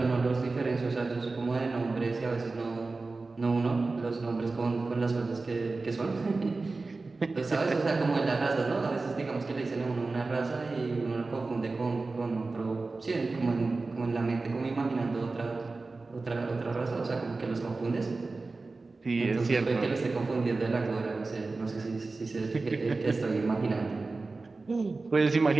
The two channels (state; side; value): quieter; left; 3.7 dB